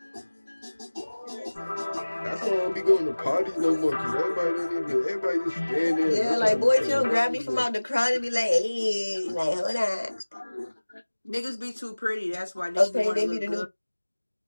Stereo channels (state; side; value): inverted; both; correlation -1.00